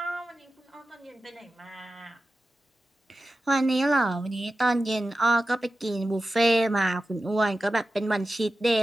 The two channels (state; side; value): normal; both; correlation 0.94